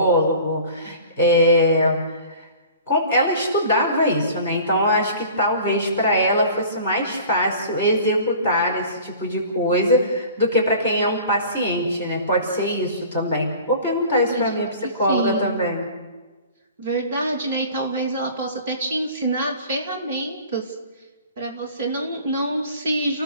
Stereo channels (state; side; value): inverted; both; correlation -0.44